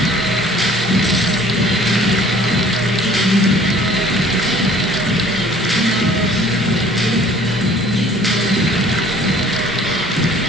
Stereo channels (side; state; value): both; normal; correlation 0.53